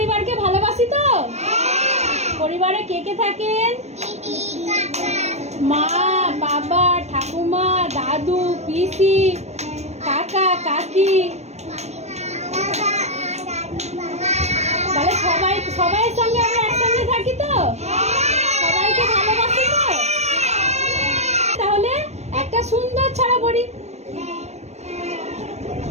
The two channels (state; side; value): late; left; 0.32 ms